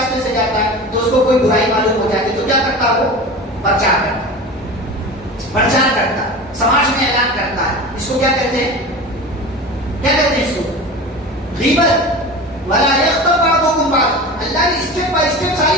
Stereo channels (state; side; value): normal; both; correlation 0.32